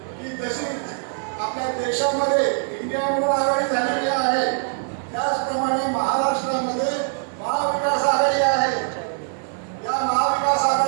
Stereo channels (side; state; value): left; silent; digital silence